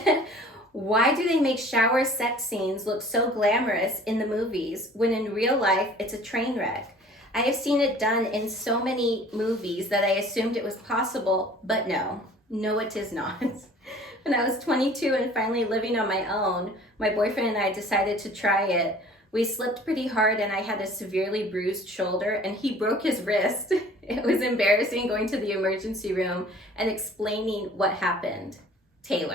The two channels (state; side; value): normal; both; correlation 0.49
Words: Why do they make shower sex scenes look so glamorous in the movies when in real life it's a train wreck? I have seen it done in so many movies that I assumed it was possible, but no, it is not. When I was 22 and finally living on my own, my boyfriend and I decided to try it. We slipped pretty hard and I had a severely bruised shoulder and he broke his wrist. It was embarrassing going to the emergency room and explaining what happened.